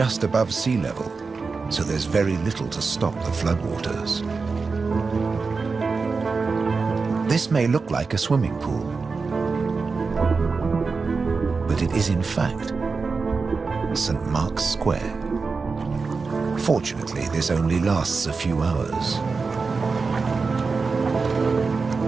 above sea level, so there's very little to stop the floodwaters. This may look like a swimming pool, but it is in fact St. Mark's Square. Fortunately, this only lasts a few hours.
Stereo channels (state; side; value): quieter; left; 4.5 dB